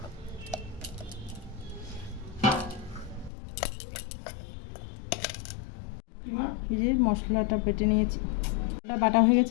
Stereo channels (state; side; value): drops out; right; at 3.3 s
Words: এই যে মশলাটা বেটে নিয়েছি, ওটা বাটা হয়ে